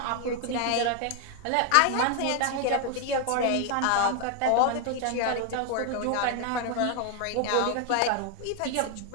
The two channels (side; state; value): both; different; correlation 0.00